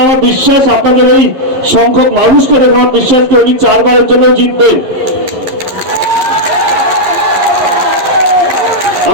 আমার বিশ্বাস আপনাদের এই সংখ্যক মানুষকে দেখে আমার বিশ্বাস কি উনি 4 বারের জন্য জিতবেন।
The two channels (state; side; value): late; left; 11 ms